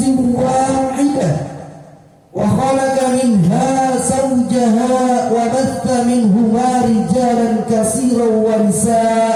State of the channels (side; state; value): both; identical; correlation 1.00